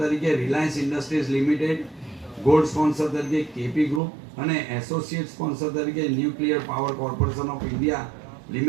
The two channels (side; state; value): left; drops out; at 4.0 s